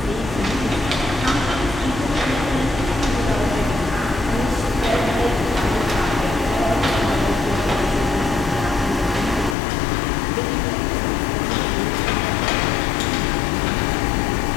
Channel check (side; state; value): right; drops out; at 9.6 s